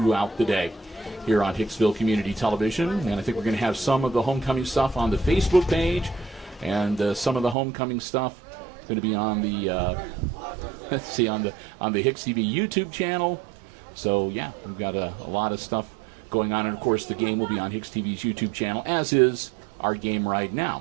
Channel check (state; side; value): drops out; left; at 7.6 s